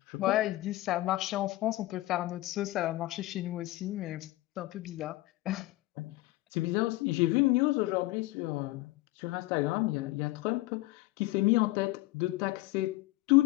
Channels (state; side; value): quieter; right; 18.4 dB